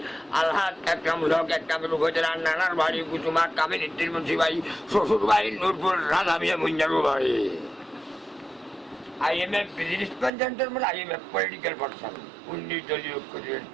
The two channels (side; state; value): left; drops out; at 10.3 s